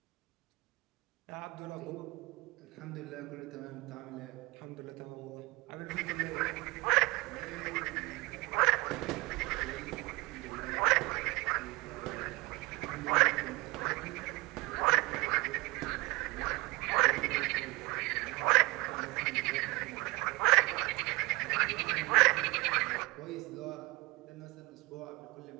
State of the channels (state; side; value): quieter; left; 22.7 dB